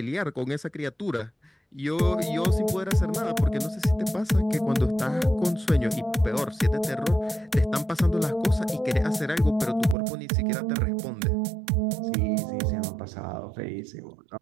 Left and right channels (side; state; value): left; drops out; at 10.0 s